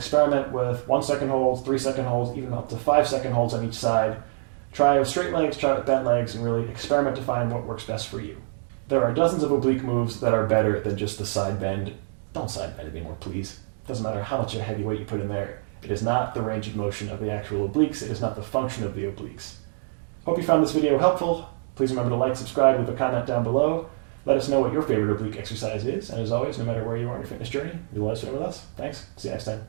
with 1 second holds, 3 second holds, even up to 5 second holds on each side. Try with straight legs, try with bent legs, and really experiment to find what works best for you. There are dozens of oblique moves that are better than just the side bend. Don't side bend anymore, please. Doesn't matter how much of a heavy weight you put in there. It is not the range of motion of the actual obliques. It is not the function of the obliques. Hope you found this video helpful. Please remember to like, subscribe, leave a comment down below. Let us know what your favorite oblique exercise is. And as always, no matter where you are in your fitness journey, you'll let us know with us. Thanks. See you next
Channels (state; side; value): silent; left; digital silence